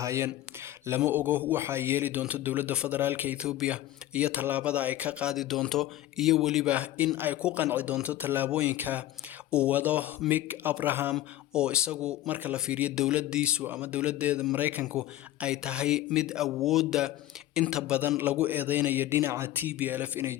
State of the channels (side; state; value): right; quieter; 14.2 dB